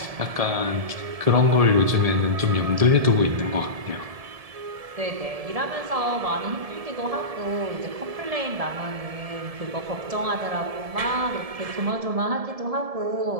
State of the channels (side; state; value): left; late; 1.7 ms